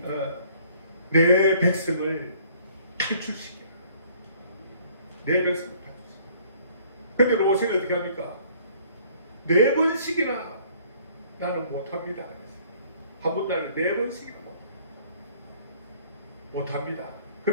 내 백성을 탈출시켜라. 내 백성을 탈출시켜라. 근데 모세는 어떻게 합니까? 4번씩이나 나는 못합니다. 한 번 나는 4번씩이나 못합니다.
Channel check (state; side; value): inverted; both; correlation -0.58